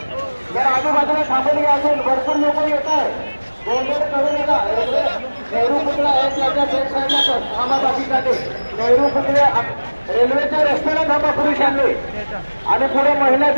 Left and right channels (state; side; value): inverted; both; correlation -1.00